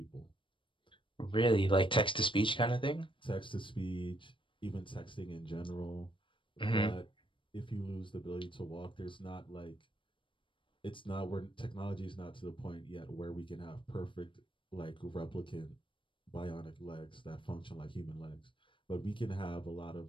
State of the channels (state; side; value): late; right; 0.25 ms